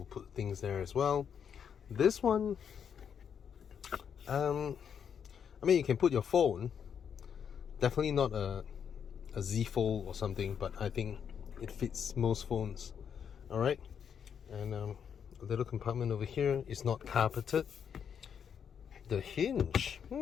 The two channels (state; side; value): quieter; right; 7.7 dB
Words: put things there as well. This one, I mean, you can put your phone, definitely not a Z Fold or something, but I think it fits most phones. All right, and a little compartment over here is not carpeted. The hinge,